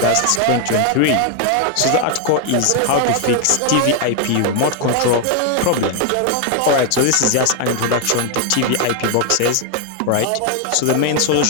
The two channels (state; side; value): different; both; correlation 0.01